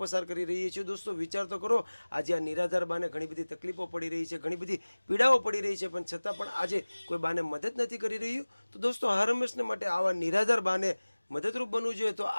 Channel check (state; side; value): inverted; both; correlation -1.00